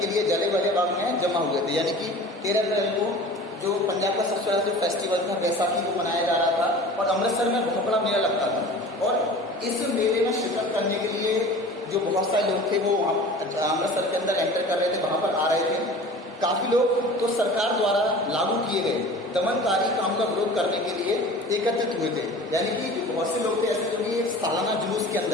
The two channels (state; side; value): normal; both; correlation 0.40